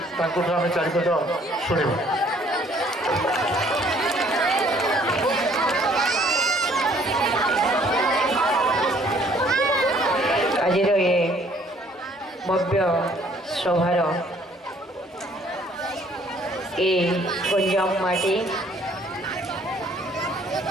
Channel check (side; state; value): both; normal; correlation 0.60